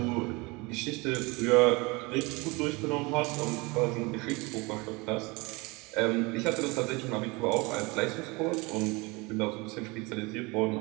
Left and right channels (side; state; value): left; quieter; 25.8 dB